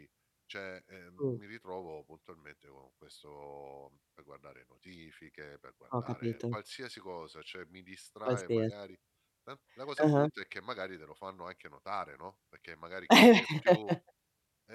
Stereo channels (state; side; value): identical; both; correlation 1.00